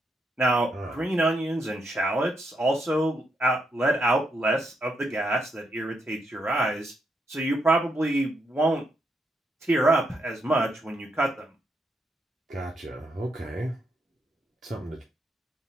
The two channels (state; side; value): normal; both; correlation 0.79